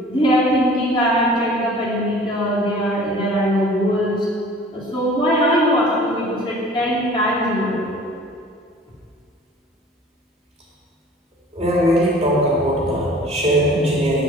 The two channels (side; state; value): both; normal; correlation 0.48